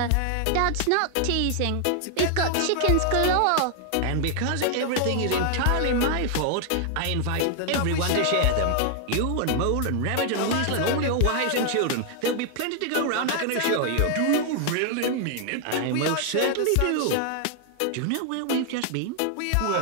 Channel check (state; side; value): different; both; correlation 0.00